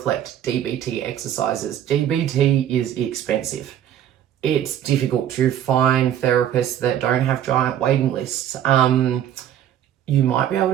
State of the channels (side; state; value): left; quieter; 10.7 dB